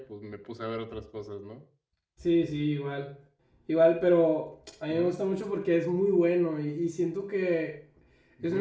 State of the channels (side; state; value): both; identical; correlation 1.00